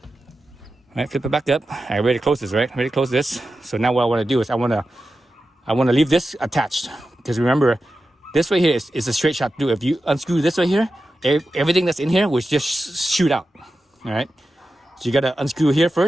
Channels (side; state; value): both; normal; correlation 0.92